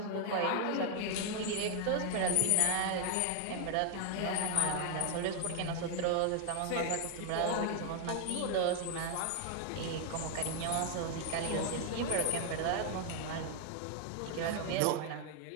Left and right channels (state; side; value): different; both; correlation 0.00